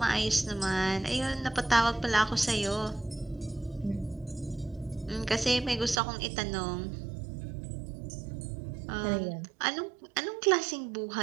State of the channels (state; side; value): drops out; left; at 6.0 s